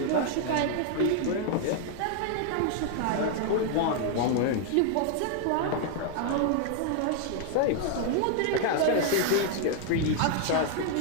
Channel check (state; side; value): different; both; correlation 0.00